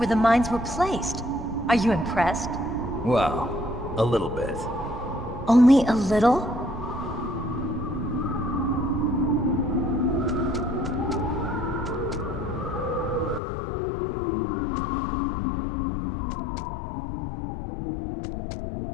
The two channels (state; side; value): drops out; right; at 13.4 s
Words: the mines were placed. Are you impressed? Well, a little bit. Only a little?